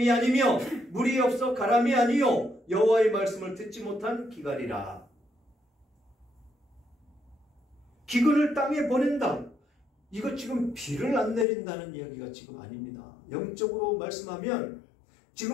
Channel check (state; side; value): drops out; right; at 11.5 s